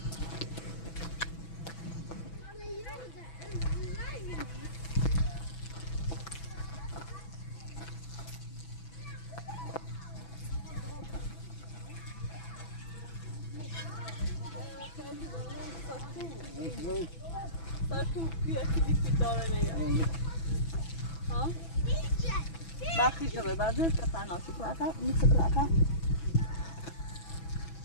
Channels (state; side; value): late; right; 6.0 ms